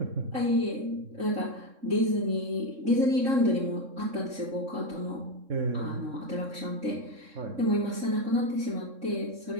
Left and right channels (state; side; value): late; left; 3.6 ms